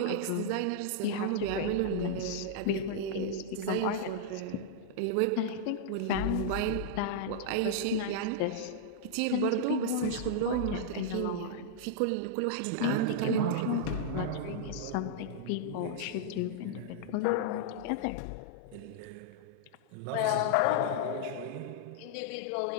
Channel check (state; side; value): different; both; correlation -0.02